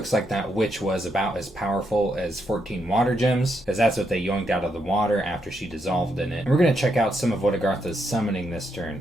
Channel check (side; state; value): left; noise; hum, 28 dB below the sound